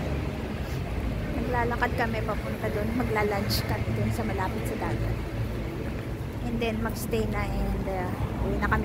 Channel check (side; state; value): both; identical; correlation 1.00